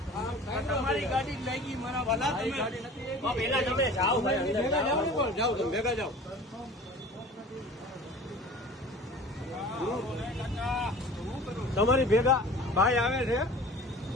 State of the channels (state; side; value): normal; both; correlation 0.42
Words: તમારી ગાડી લાગી મારા વાલા પેલા તમે જાઓ જાઓ તમે ભેગા જાઓ તમારી ભેગા ભાઈ આવે છે